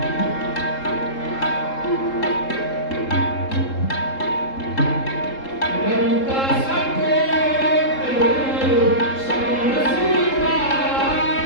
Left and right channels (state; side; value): late; right; 3.7 ms